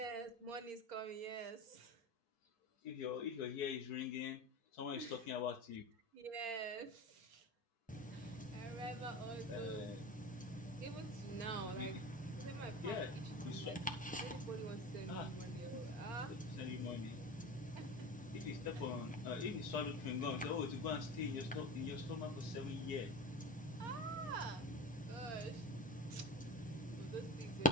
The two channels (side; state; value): both; normal; correlation 0.30